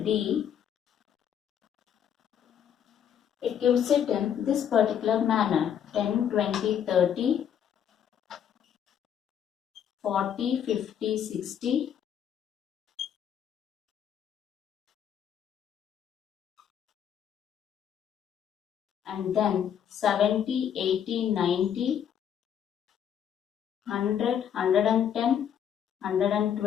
D, it gives it in this particular manner: 10, 20, 30, 40, 50, 60, and then 70, 80, 90, 100, 110,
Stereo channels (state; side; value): quieter; right; 9.0 dB